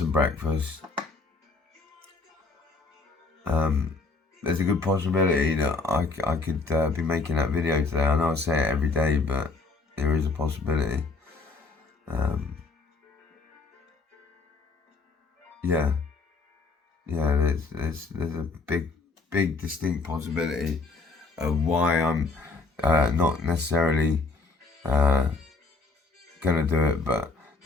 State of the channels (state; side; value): quieter; right; 3.9 dB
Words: breakfast. There's a good possibility that I could be making that video today. I know I say it every day, but there is a possibility. Yeah, there's a big distinct possibility of why I'm not necessarily gonna do it, but